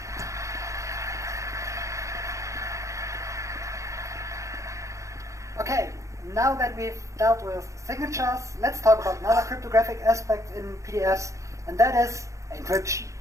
Okay, now that we've dealt with signatures, let's talk about another cryptographic aspect in PDFs, and that is encryption.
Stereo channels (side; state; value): left; late; 0.15 ms